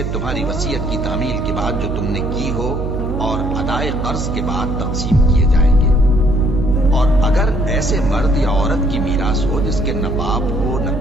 تمہاری وصیت کی تعمیل کے بعد جو تم نے کی ہو اور ادائے قرض کے بعد تقسیم کیے جائیں گے۔ اور اگر ایسے مرد یا عورت کی میراث ہو جس کے نہ باپ ہو نہ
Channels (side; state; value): right; noise; hum, 3 dB below the sound